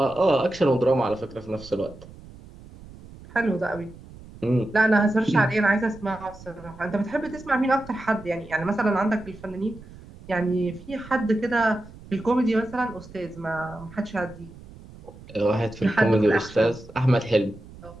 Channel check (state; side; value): noise; right; rumble, 19 dB below the sound